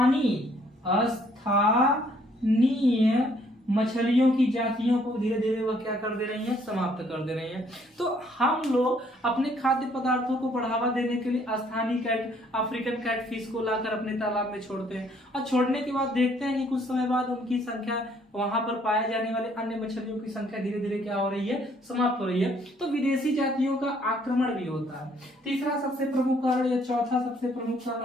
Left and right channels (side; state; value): both; normal; correlation 0.64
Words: स्थानीय मछलियों की जातियों को धीरे धीरे वह क्या कर दे रही हैं, समाप्त कर दे रही हैं। तो हम लोग अपने खाद्य पदार्थों को बढ़ावा देने के लिए स्थानीय अफ्रीकन कैटफिश को लाकर अपने तालाब में छोड़ते हैं, और छोड़ने के बाद देखते हैं कि कुछ समय बाद उनकी संख्या, वहां पर पाए जाने वाले अन्य मछलियों की संख्या धीरे धीरे क्या हो रही है, समाप्त हो रही है। तो विदेशी जातियों का आक्रमण भी होता है। तीसरा सबसे प्रमुख कारण या चौथा सबसे प्रमुख कारण